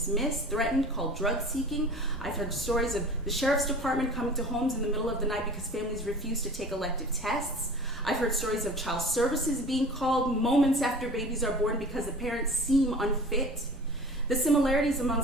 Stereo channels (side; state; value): both; normal; correlation 0.41